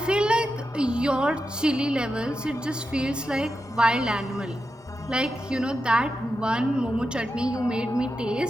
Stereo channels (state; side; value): normal; both; correlation 0.89